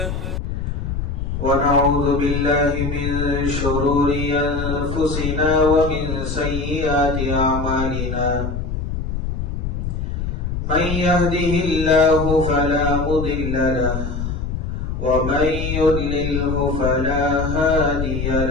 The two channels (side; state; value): left; noise; rumble, 3 dB below the sound